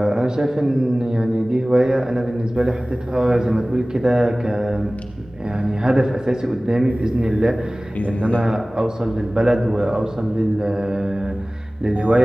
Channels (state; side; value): normal; both; correlation 0.98